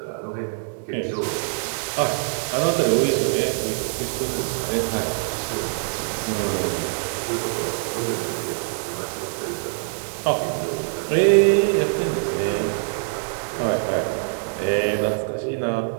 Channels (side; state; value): left; silent; digital silence